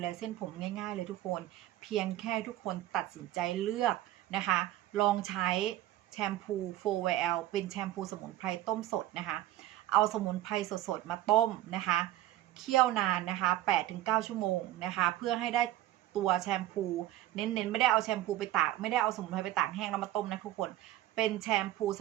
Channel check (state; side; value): quieter; left; 14.3 dB